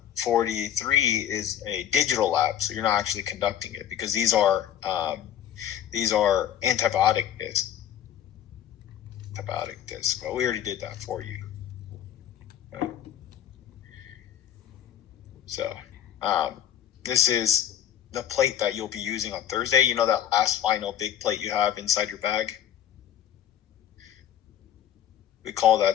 43 is a digital lab, so you're not actually conducting it because these are antibiotic discs. Well, we already did that for you. Okay. So this is the plate that you'll be using on Thursday, you know, that last final big plate you have inside your bag? We call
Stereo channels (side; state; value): right; quieter; 10.3 dB